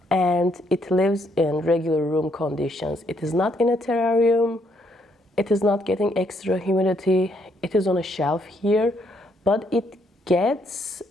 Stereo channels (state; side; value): normal; both; correlation 0.72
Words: and it lives in regular room conditions. It is not in a terrarium. It is not getting extra humidity. It is on a shelf here, but it gets